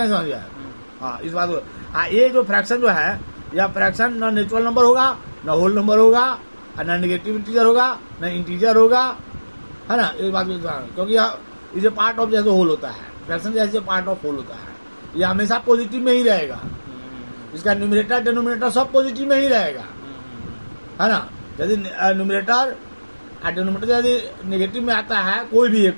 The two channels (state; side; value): inverted; both; correlation -1.00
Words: हाँ, इस बात को। ये जो फ्रैक्शन जो है, यह फ्रैक्शन न नेचुरल नंबर होगा, न होल नंबर होगा, और न नेगेटिव इंटीजर होगा, न इंटीजर होगा, है ना। इस बात को, क्योंकि इसे पार्ट ऑफ जैसे होल होता है, फ्रैक्शन जैसे पार्ट ऑफ होल होता है, ये हमेशा पॉजिटिव में ही रहेगा। इसका न्यूमरेटर डिनोमिनेटर सब पॉजिटिव में ही रहेगा, है ना। यदि न्यूमरेटर और डिनोमिनेटर यदि नेगेटिव में आता है कोई भी एक,